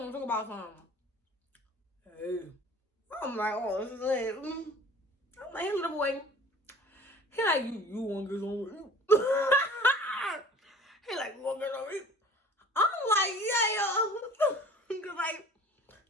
and talk about something. Hey. I'm like, oh, this is it. I'm like, hey, little boy. He like, you want to get some? He like, you want to get some? I'm like, yeah, yo. Cause like,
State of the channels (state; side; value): normal; both; correlation 0.46